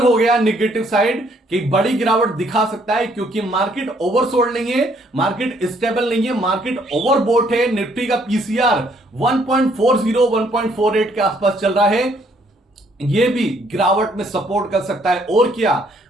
हो गया निगेटिव साइड कि बड़ी गिरावट दिखा सकता है, क्योंकि मार्केट ओवरसोल्ड नहीं है, मार्केट स्टेबल नहीं है, मार्केट ओवरबोट है। निफ्टी का पीसीआर 1.40 1.48 के आसपास चल रहा है, ये भी गिरावट में सपोर्ट कर सकता है। और क्या,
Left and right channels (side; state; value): both; normal; correlation 0.67